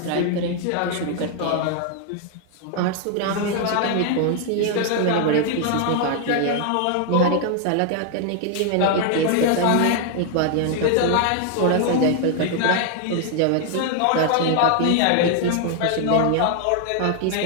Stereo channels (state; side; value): different; both; correlation 0.00